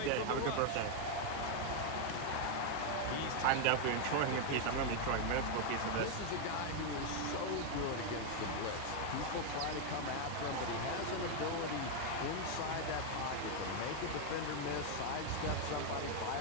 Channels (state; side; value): different; both; correlation 0.01